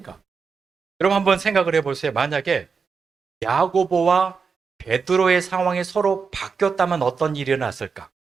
여러분 한번 생각을 해보세요. 만약에 야고보와 베드로의 상황이 서로 바뀌었다면 어떤 일이 일어났을까?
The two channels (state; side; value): quieter; left; 5.4 dB